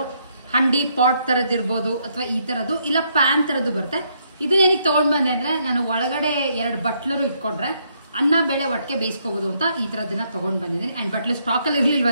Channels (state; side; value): inverted; both; correlation -0.73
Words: ಹಂಡಿ ಪಾಟ್ ಥರದ್ದಿರ್ಬೋದು, ಅಥವಾ ಈ ಥರದ್ದು ಇಲ್ಲ ಪ್ಯಾನ್ ಥರದ್ದು ಬರುತ್ತೆ. ಇದನ್ನೇನಿಗೆ ತೊಗೊಂಡು ಬಂದೆ ಅಂದರೆ, ನಾನು ಒಳಗಡೆ 2 ಬಟ್ಲರು ಇಟ್ಕೊಂಡ್ರೆ ಅನ್ನ ಬೇಳೆ ಒಟ್ಟಿಗೆ ಬೇಯಿಸ್ಕೋಬೋದು ಅಂತ ಈ ಥರದ್ದನ್ನ ತೊಗೊಂಡು ಬಂದಿದ್ದೀನಿ. ಆ್ಯಂಡ್ ಬಟ್ಲು ಸ್ಟಾಕಲ್ಲಿ